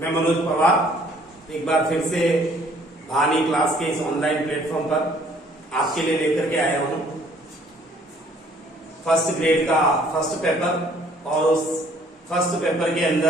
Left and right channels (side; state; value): both; normal; correlation 0.59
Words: मैं मनोज पवार एक बार फिर से भानी क्लास के इस ऑनलाइन प्लेटफॉर्म पर आपके लिए लेकर के आया हूं फर्स्ट ग्रेड का फर्स्ट पेपर। और उस फर्स्ट पेपर के